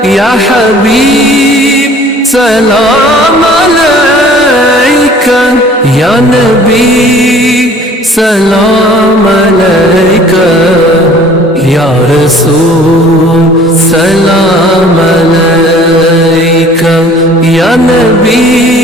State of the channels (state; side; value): normal; both; correlation 0.51